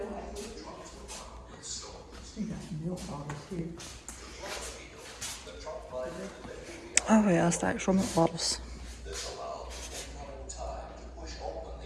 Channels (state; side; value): identical; both; correlation 1.00